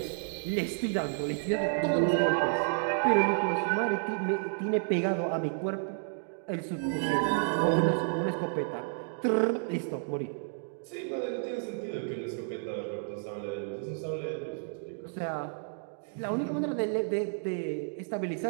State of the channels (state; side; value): silent; left; digital silence